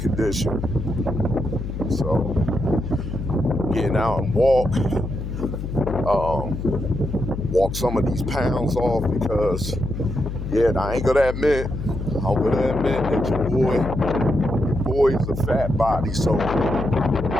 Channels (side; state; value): left; noise; hum, 6 dB below the sound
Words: So getting out and walk some of these pounds off because, I ain't gonna admit that your boy is a fat body. So